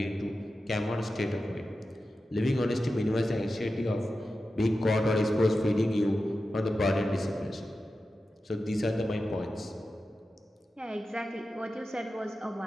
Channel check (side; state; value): both; normal; correlation 0.92